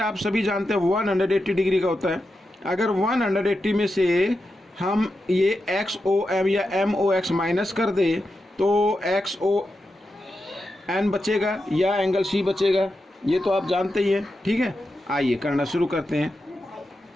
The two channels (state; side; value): normal; both; correlation 0.89